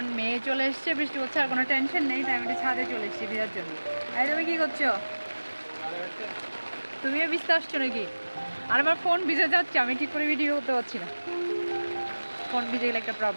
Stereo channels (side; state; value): both; inverted; correlation -1.00